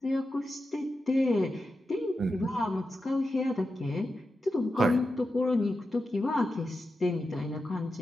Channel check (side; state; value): both; normal; correlation 0.90